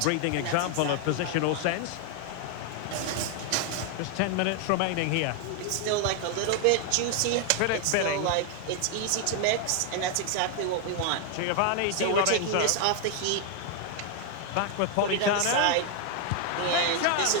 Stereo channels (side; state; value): both; different; correlation 0.00